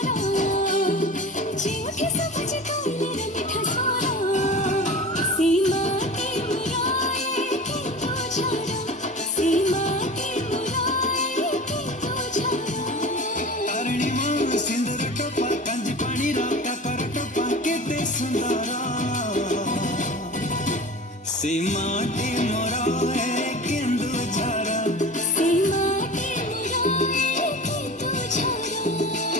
ଯେଉଁଠି ସବୁଛି କୋଇଲିର ମିଠା ସ୍ୱର, ସେ ମାଟି ମୋର ଏ କେନ୍ଦୁଝର, ସେ ମାଟି ମୋର ଏ କେନ୍ଦୁଝର। ତାରିଣୀ ମା ସିନ୍ଦୁର ଟୋପା, କାଞ୍ଜି ପାଣିର କାକର ଟୋପା, କେତେ ସୁନ୍ଦର, ସେ ମାଟି ମୋର ଏ କେନ୍ଦୁଝର। ସେ ମାଟି ମୋର ଏ କେନ୍ଦୁଝର।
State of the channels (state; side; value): normal; both; correlation 0.35